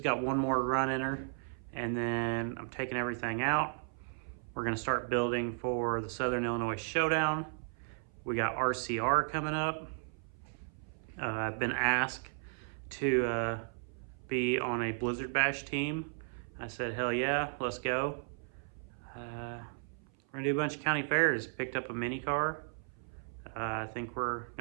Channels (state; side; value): silent; left; 54 dB below the other